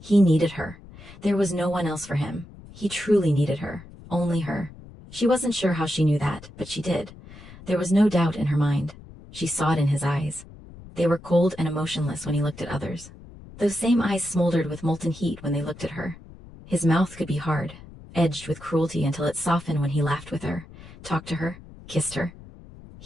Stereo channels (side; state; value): left; noise; rumble, 19 dB below the sound